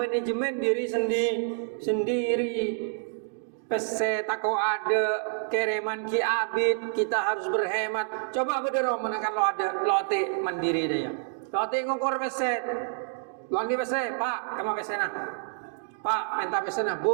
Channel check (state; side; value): silent; left; digital silence